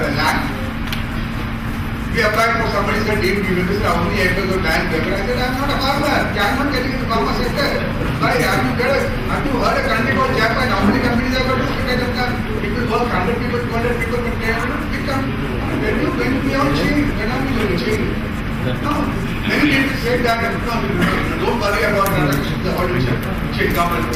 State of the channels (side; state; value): both; identical; correlation 1.00